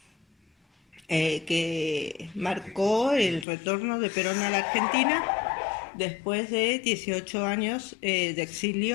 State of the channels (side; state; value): right; drops out; at 3.5 s